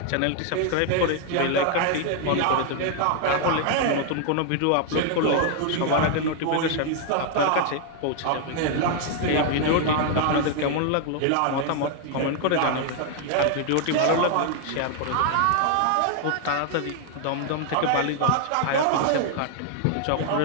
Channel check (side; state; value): both; different; correlation 0.00